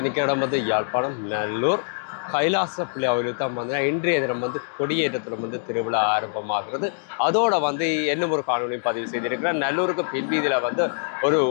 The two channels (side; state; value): right; silent; digital silence